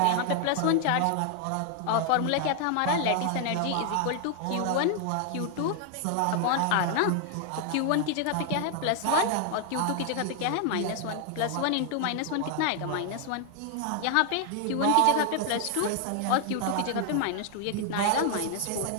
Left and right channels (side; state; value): both; different; correlation 0.00